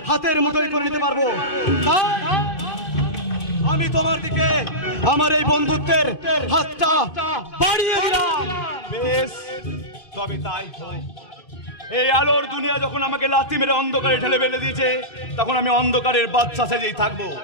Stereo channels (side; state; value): right; late; 2.5 ms